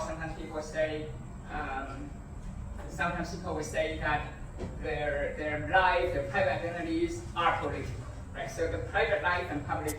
people will say that their life, their private identities are political. Right? So the private life and public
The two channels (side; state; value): both; identical; correlation 1.00